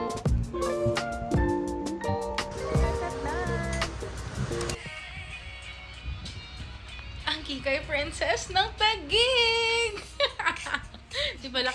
Ang Kikay Princess ng Taguig! Di pala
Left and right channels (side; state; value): both; identical; correlation 1.00